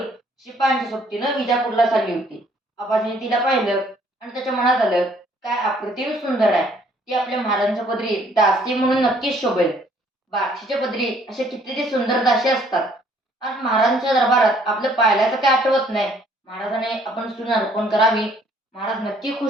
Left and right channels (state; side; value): normal; both; correlation 0.62